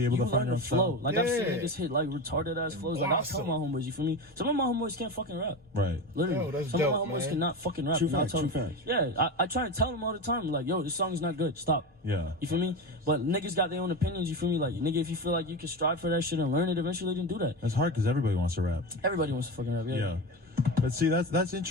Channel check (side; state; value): both; normal; correlation 0.23